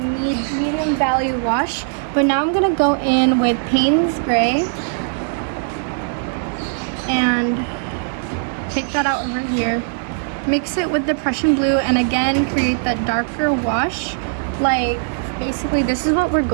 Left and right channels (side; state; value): left; silent; digital silence